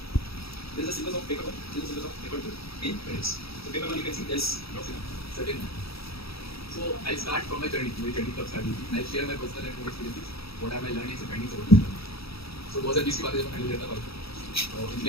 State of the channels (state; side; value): late; right; 0.77 ms